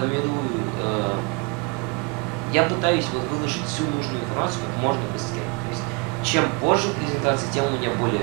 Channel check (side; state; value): left; quieter; 30.2 dB